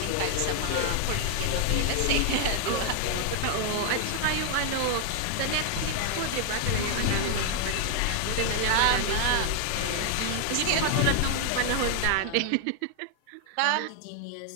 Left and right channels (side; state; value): both; different; correlation 0.00